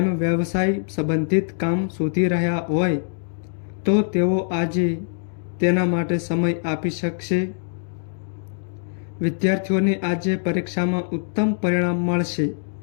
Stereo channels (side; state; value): right; silent; digital silence